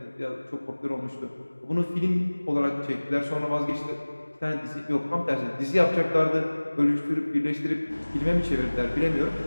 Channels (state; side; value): inverted; both; correlation -1.00